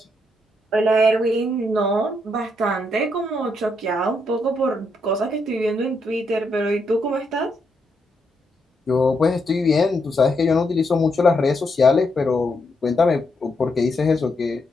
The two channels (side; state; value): both; normal; correlation 0.79